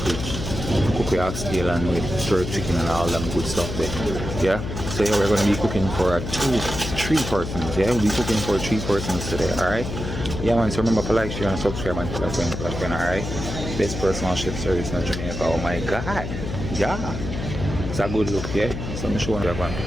cook the oxtail and with jerk chicken and all them good stuff there. Yeah. So yeah, we're gonna be cooking for three persons. Yeah, we'll be cooking for 3 persons today. Alright. Yeah man, so remember to like, share and subscribe and tell a friend, alright? Best personal chef service in Jamaica. Oh my god. Yeah. It's a good look, yeah. So I'm showing you one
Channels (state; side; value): noise; left; hum, 6 dB below the sound